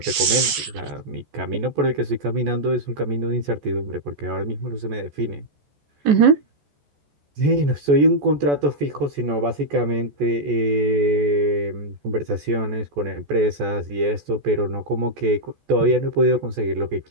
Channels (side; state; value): left; late; 14 ms